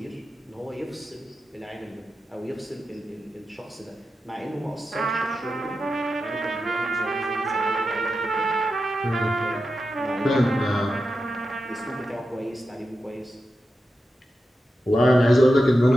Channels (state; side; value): normal; both; correlation 0.90